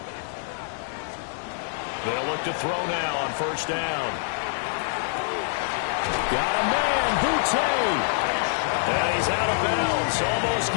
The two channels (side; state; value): right; silent; 57 dB below the other